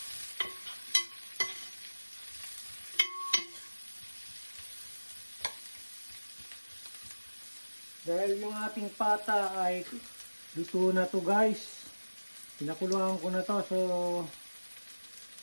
Dahil yung ating pata ay luto na to guys. Pinakuluan ko na to. So,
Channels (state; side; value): inverted; both; correlation -1.00